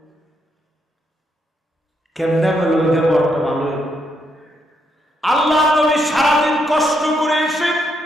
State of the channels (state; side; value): normal; both; correlation 0.78